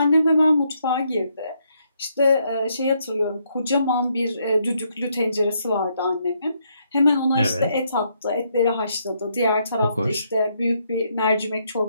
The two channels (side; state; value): both; inverted; correlation -0.75